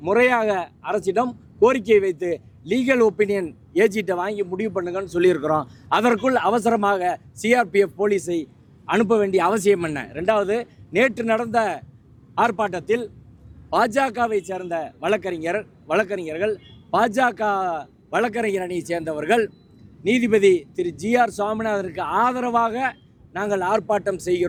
முறையாக அரசிடம் கோரிக்கை வைத்து லீகல் ஒப்பீனியன் ஏஜிட்டை வாங்கி முடிவு பண்ணுங்கன்னு சொல்லியிருக்கிறோம். அதற்குள் அவசரமாக சிஆர்பிஎஃப் போலீஸை அனுப்ப வேண்டிய அவசியம் என்ன? ரெண்டாவது, நேற்று நடந்த ஆர்ப்பாட்டத்தில் பாஜகவை சேர்ந்த வழக்கறிஞர்கள் பாஜக வழக்கறிஞர் அணியை சேர்ந்தவர்கள் நீதிபதி திரு GR சுவாமிநாதனுக்கு ஆதரவாக நாங்கள் ஆர்ப்பாட்டம்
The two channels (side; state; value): both; identical; correlation 1.00